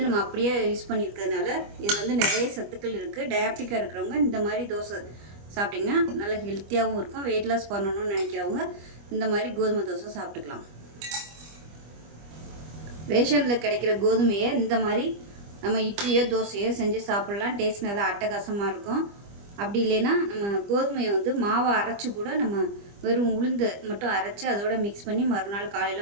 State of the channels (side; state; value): left; late; 25 ms